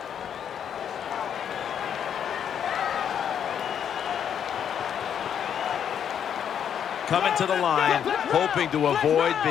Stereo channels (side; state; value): right; quieter; 8.6 dB